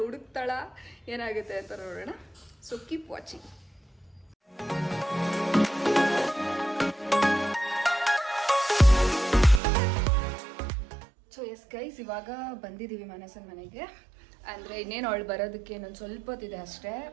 ಹುಡುಕ್ತಾಳಾ, ಏನಾಗುತ್ತೆ ಅಂತ ನೋಡೋಣ. So keep watching. So yes guys, ಇವಾಗ ಬಂದಿದ್ದೀವಿ ಮನಸ್ಸನ ಮನೆಗೆ. ಅಂದರೆ ಇನ್ನೇನು ಅವಳು ಬರೋದಕ್ಕೆ ಇನ್ನೊಂದು ಸ್ವಲ್ಪ ಹೊತ್ತಿದೆ ಅಷ್ಟೇ,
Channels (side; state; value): left; drops out; at 9.6 s